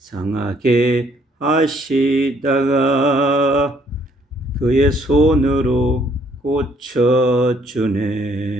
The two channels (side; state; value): both; normal; correlation 0.65